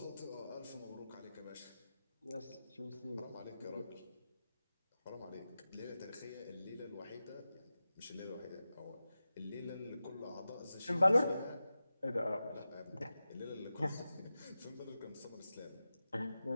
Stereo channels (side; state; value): both; inverted; correlation -0.93